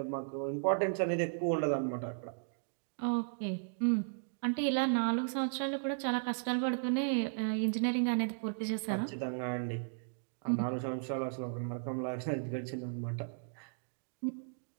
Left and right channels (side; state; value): left; silent; digital silence